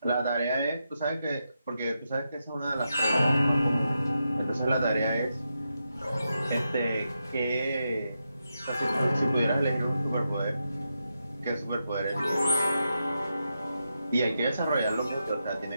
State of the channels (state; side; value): inverted; both; correlation -0.86